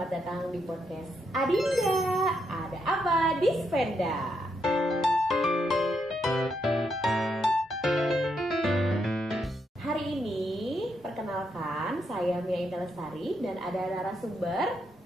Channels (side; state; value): both; normal; correlation 0.79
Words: datang di podcast Adinda. Ada apa di Spenda? Hari ini perkenalkan, saya Mia Indah Lestari dan ada narasumber